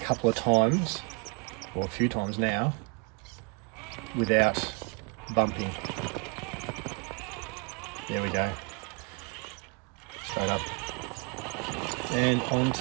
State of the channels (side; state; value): left; quieter; 33.5 dB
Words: of times, or a few times now, without bumping. There we go. Straight up. And